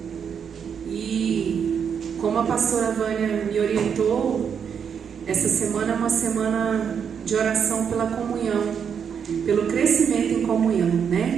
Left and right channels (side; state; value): left; quieter; 7.3 dB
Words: E como a pastora Vânia me orientou, essa semana é uma semana de oração pela comunhão, pelo crescimento em comunhão,